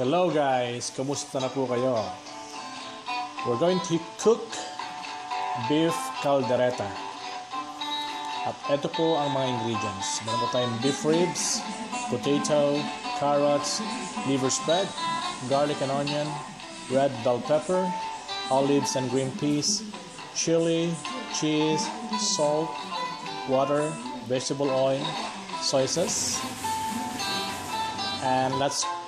guys, kamusta na po kayo? We're going to cook beef caldereta. At ito po ang mga ingredients. Meron po tayong beef ribs, potato, carrots, liver spread, garlic and onion, red bell pepper, olives and green peas, chili, cheese, salt, water, vegetable oil, soy sauce. And let's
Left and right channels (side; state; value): both; identical; correlation 1.00